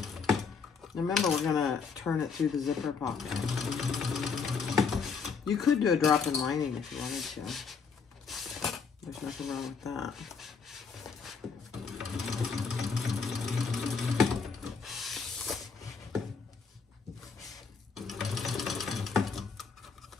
Remember, we're gonna turn it through the zipper pocket. You could do a drop-in lining if you wanted to. There's nothing wrong with that.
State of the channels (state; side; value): quieter; right; 5.4 dB